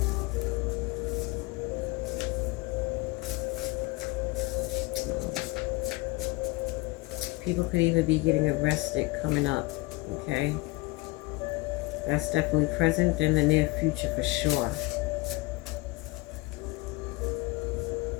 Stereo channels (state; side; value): quieter; right; 22.3 dB